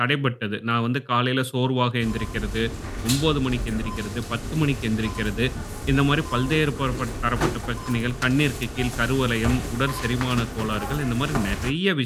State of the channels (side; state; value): both; identical; correlation 1.00